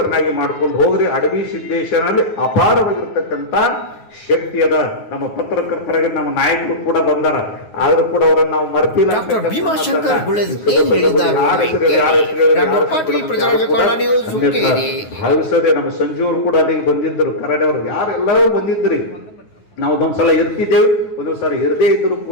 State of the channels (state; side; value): late; right; 9.4 ms